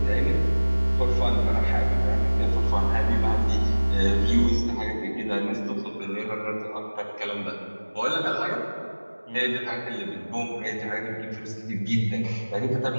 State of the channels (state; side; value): inverted; both; correlation -1.00